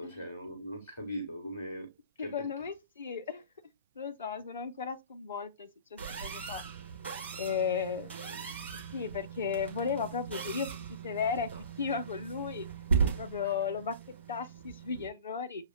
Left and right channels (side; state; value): both; inverted; correlation -0.41